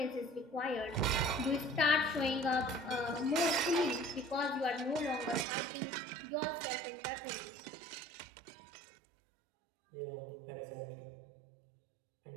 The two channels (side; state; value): left; drops out; at 5.5 s